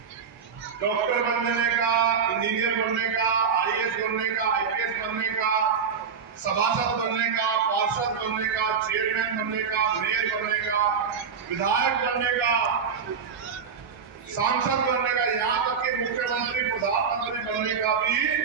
डॉक्टर बनने का, इंजीनियर बनने का, आईएएस बनने का, आईपीएस बनने का, सभासद बनने का, पार्षद बनने का, चेयरमैन बनने का, मेयर बनने का, विधायक बनने का, सांसद बनने का, यहाँ तक कि मुख्यमंत्री, प्रधानमंत्री बनने का भी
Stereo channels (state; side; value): quieter; left; 6.3 dB